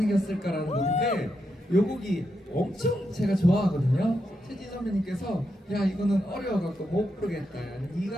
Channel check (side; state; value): both; normal; correlation 0.84